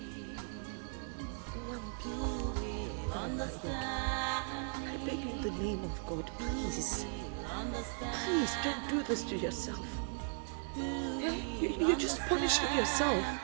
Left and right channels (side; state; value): left; silent; 53 dB below the other